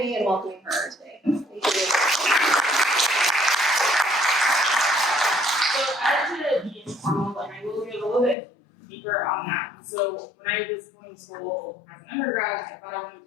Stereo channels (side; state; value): right; drops out; at 8.3 s